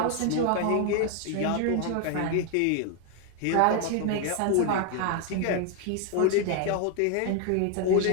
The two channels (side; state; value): both; different; correlation 0.01